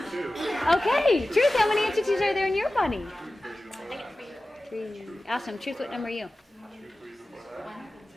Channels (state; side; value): normal; both; correlation 0.96